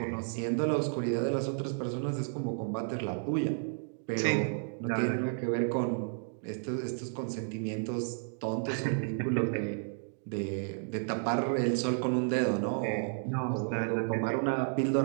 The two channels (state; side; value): silent; left; digital silence